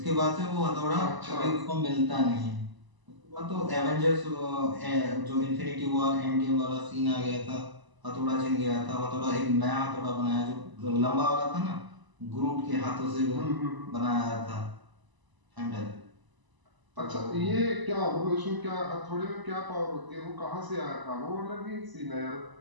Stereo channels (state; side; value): late; left; 1.0 ms